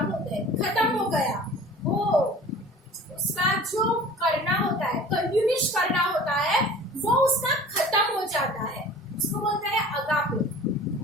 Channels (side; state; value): both; normal; correlation 0.43